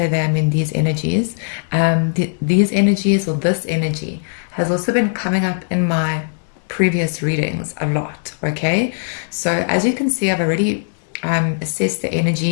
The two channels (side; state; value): right; silent; 67 dB below the other